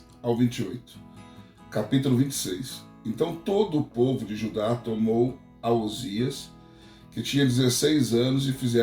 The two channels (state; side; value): identical; both; correlation 1.00